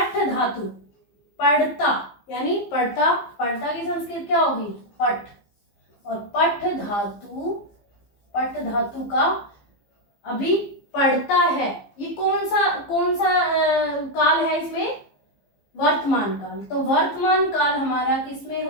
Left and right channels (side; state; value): right; late; 15 ms